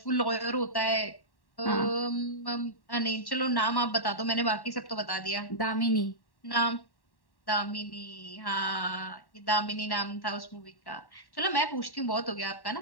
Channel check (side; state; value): right; late; 1.1 ms